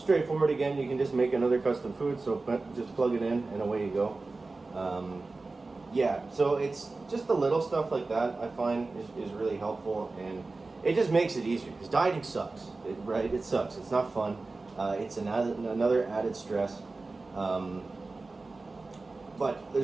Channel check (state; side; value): quieter; left; 3.5 dB